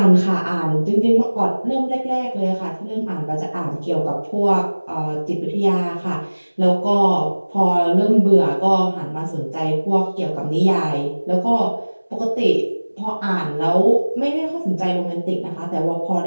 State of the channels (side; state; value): both; inverted; correlation -1.00